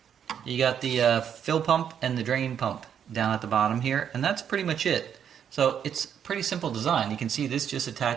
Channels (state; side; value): quieter; left; 8.5 dB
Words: You got the fill pump and the drain pump down at the bottom here, and that's pretty much it. So it's pretty simple design. You can see this just